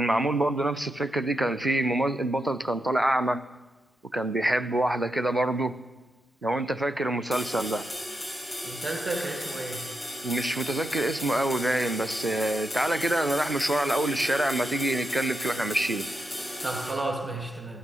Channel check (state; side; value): normal; both; correlation 0.85